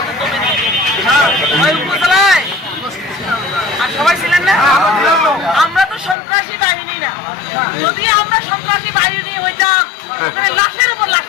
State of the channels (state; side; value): drops out; right; at 6.2 s